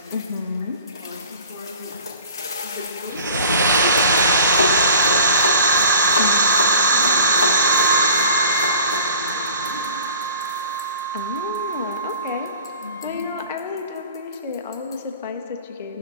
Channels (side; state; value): both; inverted; correlation -0.44